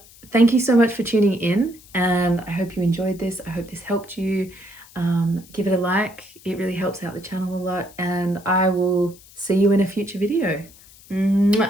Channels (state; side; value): noise; left; hiss, 23 dB below the sound